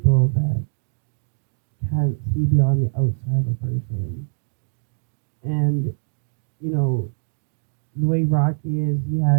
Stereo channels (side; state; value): left; silent; digital silence